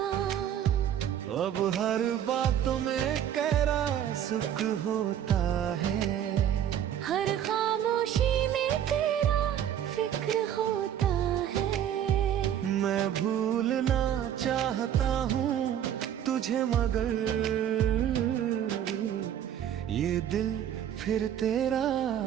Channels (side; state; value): left; quieter; 10.1 dB